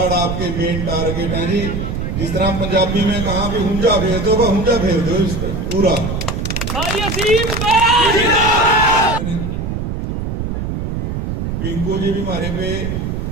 आपके मेन टारगेट हैं जी। जिस तरह पंजाबी में कहा भी हुंजा फेर दो, हुंजा फेर दो इस पर पूरा। पिंकू जी भी हमारे पे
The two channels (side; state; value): right; noise; rumble, 3 dB below the sound